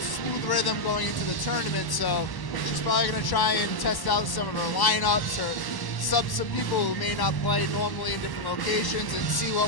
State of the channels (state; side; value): late; right; 1.1 ms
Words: smooth rhythm going into the tournament. So she's probably going to try and test out some of her lineups or sub some people who may not play normally in different locations and see